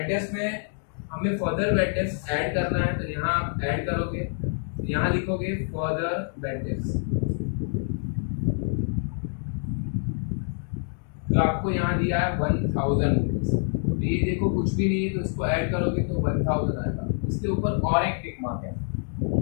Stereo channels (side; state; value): right; silent; 61 dB below the other